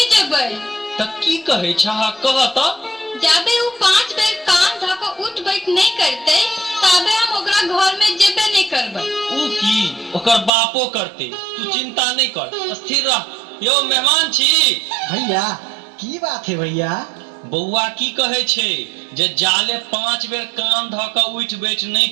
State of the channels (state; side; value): drops out; left; at 10.5 s